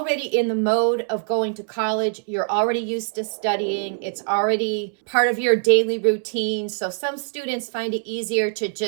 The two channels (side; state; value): left; silent; 63 dB below the other